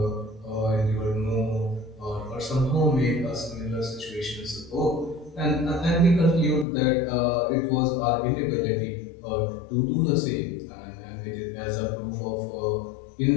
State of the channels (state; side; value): drops out; right; at 6.7 s